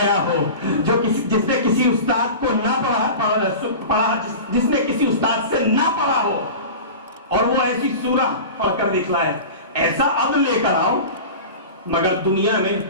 ہو، جو جس نے کسی استاد کو نہ پڑھا، جس نے کسی استاد سے نہ پڑھا ہو، اور وہ ایسی سورہ پڑھ کر دکھلائے۔ ایسا عبد لے کر آؤ، مگر دنیا میں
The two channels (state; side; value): inverted; both; correlation -0.33